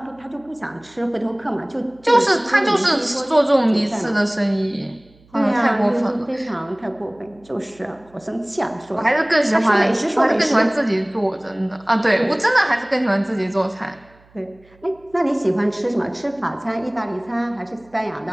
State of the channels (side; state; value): right; noise; hum, 29 dB below the sound